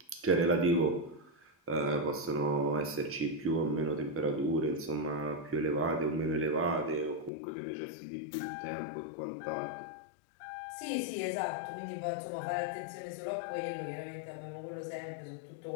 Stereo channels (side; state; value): right; drops out; at 7.3 s